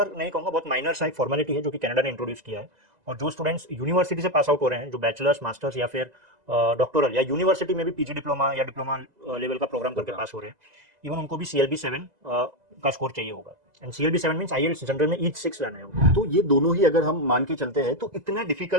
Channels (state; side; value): late; left; 2.0 ms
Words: नहीं कहूंगा, बहुत माइनर सा एक फॉर्मेलिटी है जो कि कनाडा ने इंट्रोड्यूस किया है। और जो स्टूडेंट्स यूनिवर्सिटी से पास आउट हो रहे हैं, जो बैचलर्स, मास्टर्स या फिर डॉक्टोरल या यूनिवर्सिटी में भी PG डिप्लोमा या डिप्लोमा लेवल का प्रोग्राम करके पास हो रहे हैं, इवन उनको भी CLB 7 का स्कोर चाहिए होगा। And CLB 7 means IELTS general में ईच 6 लाना है। तो ये दोनों ही अगर हम मान के चलते हैं तो इतना